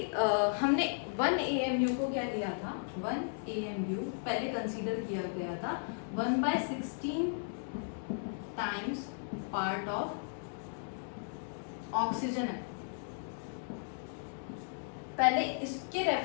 हमने 1 AMU को क्या लिया था, 1 AMU पहले कंसीडर किया गया था 1/16 टाइम्स पार्ट ऑफ ऑक्सीजन है। पहले इसके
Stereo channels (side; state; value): right; silent; digital silence